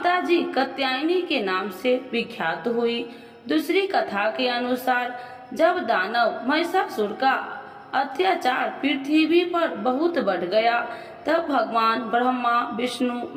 जी कात्यायनी के नाम से विख्यात हुई। दूसरी कथा के अनुसार जब दानव महिषासुर का अत्याचार पृथ्वी पर बहुत बढ़ गया, तब भगवान ब्रह्मा, विष्णु,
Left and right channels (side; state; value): both; identical; correlation 1.00